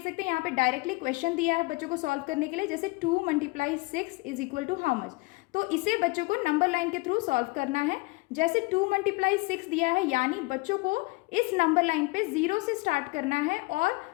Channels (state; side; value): quieter; right; 25.1 dB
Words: सकते हैं, यहाँ पे डायरेक्टली क्वेश्चन दिया है बच्चों को सॉल्व करने के लिए, जैसे 2 × 6 = हाउ मच। तो इसे बच्चों को नंबर लाइन के थ्रू सॉल्व करना है। जैसे 2 × 6 दिया है, यानी बच्चों को इस नंबर लाइन पे 0 से स्टार्ट करना है और